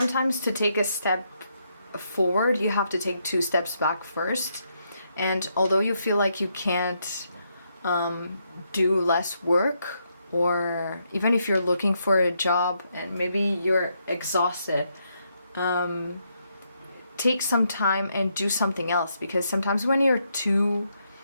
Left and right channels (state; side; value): inverted; both; correlation -0.78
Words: to take a step forward, you have to take 2 steps back first. And although you feel like you can't do less work, or even if you're looking for a job and maybe you're exhausted, take some time and do something else, because sometimes when you're too